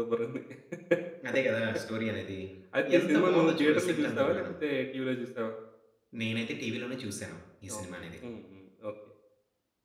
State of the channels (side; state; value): both; identical; correlation 1.00